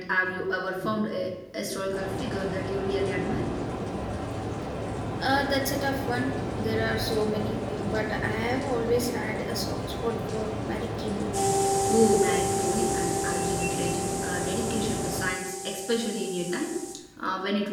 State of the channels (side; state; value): both; identical; correlation 1.00